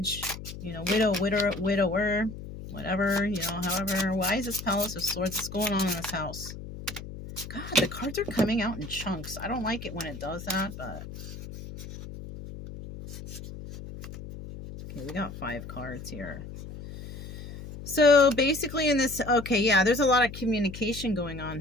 widower, whatever, however. Why is this Palace of Swords? What's going on in this house? God, the cards are coming out in chunks. I don't like it when it does that, but... Okay, we got 5 cards here. So basically in this, okay, yeah, there's a lot of communication going on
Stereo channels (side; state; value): left; noise; hum, 11 dB below the sound